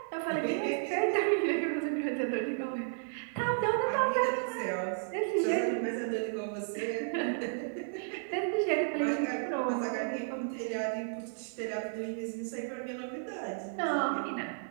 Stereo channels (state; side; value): silent; left; 56 dB below the other